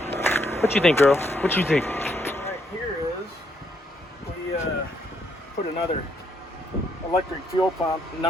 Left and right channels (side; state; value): both; normal; correlation 0.74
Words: What you think, girl? What you think? Right here is we put another electric fuel pump